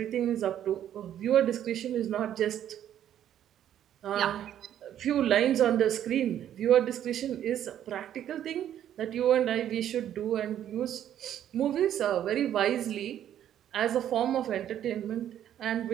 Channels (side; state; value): left; quieter; 10.7 dB